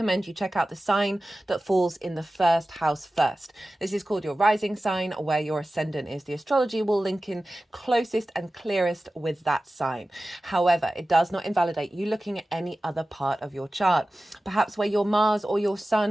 you check out the sign that falls in the first house first. This is called your rising sign, where your ascendant is. The astrology will link in closest and clearest with that sign. However, it does not invalidate you looking at any other part of your chart. Perhaps where your Mars or your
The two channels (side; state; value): both; normal; correlation 0.96